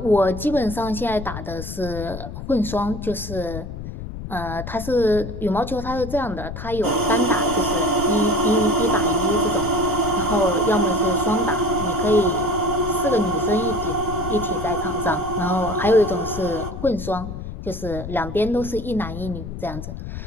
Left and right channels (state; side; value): noise; left; rumble, 9 dB below the sound